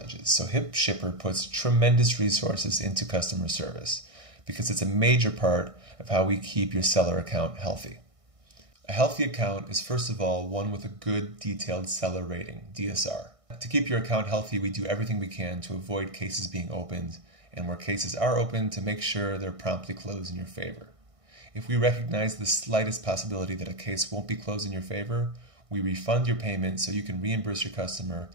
so HipShipper puts tremendous resources into customer service because it's a major part of how we keep your seller account healthy. A healthy account is first of all one with a good detailed seller rating, DSR. To keep your account healthy, we do everything we can to avoid cases being opened, and where cases are opened, to make sure they're promptly closed in your favor. If we recognize the slightest possibility that a case won't be closed in your favor, we refund your payment so you can reimburse your customer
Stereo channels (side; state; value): left; late; 1.6 ms